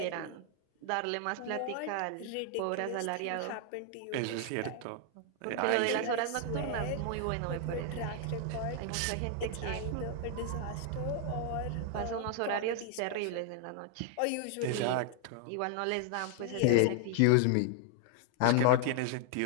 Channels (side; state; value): both; different; correlation 0.00